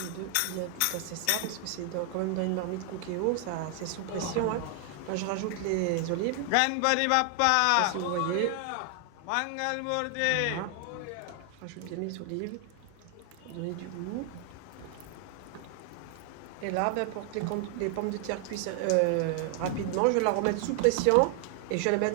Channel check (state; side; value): different; both; correlation 0.00